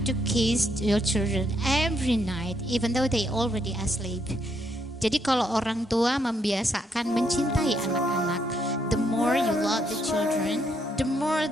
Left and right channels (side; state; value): both; normal; correlation 0.75